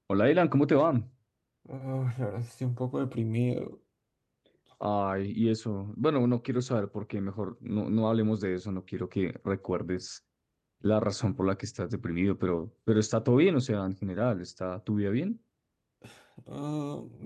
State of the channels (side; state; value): both; identical; correlation 1.00